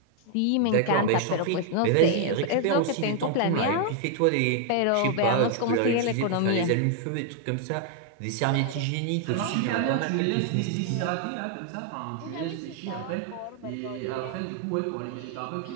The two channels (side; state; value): both; different; correlation 0.00